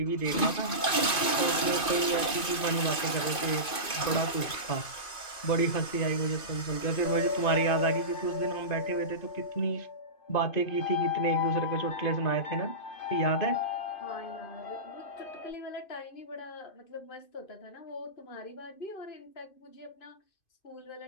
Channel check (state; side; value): late; right; 2.5 ms